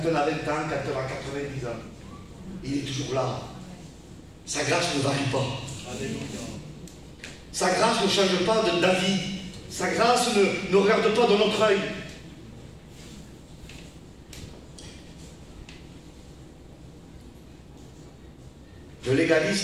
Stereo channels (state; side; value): identical; both; correlation 1.00